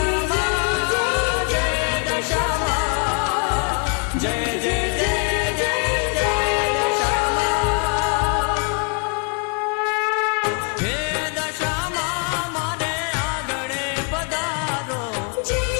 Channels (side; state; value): right; quieter; 35.9 dB